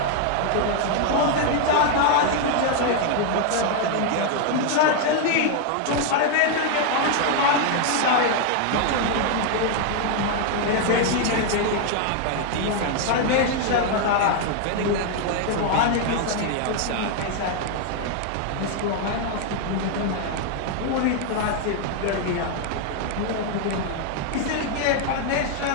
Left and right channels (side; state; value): both; different; correlation 0.00